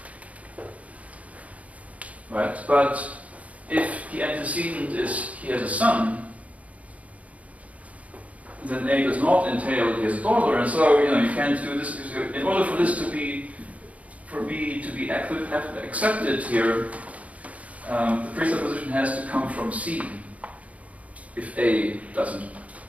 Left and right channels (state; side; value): late; left; 0.067 ms